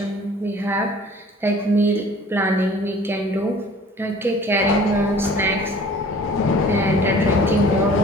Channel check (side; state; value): both; normal; correlation 0.48